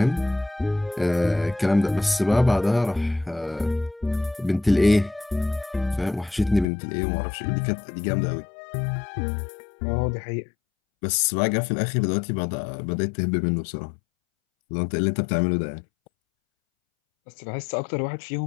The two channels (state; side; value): drops out; right; at 6.7 s